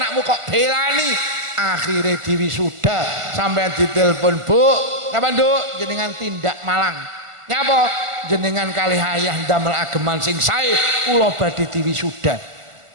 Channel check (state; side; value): late; left; 1.4 ms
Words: kok belani. Akhirnya diwisuda sampean ditelepon, Bu kapan Duk jenengan tindak Malang nyapa jenengan kali ayah damel ageman sing sae kula badhe diwisuda.